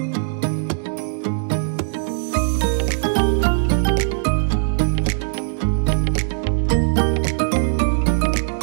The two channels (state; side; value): silent; left; digital silence